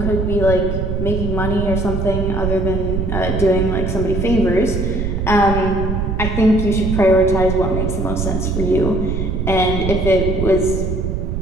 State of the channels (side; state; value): right; noise; rumble, 1 dB below the sound